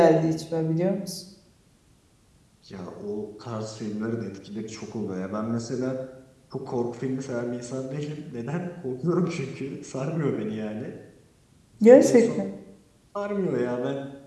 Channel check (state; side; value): identical; both; correlation 1.00